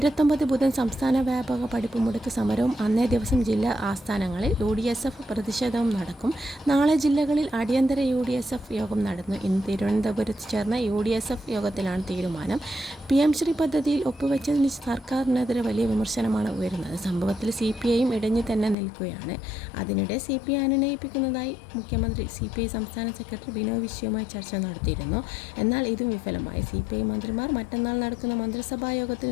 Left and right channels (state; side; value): drops out; right; at 18.8 s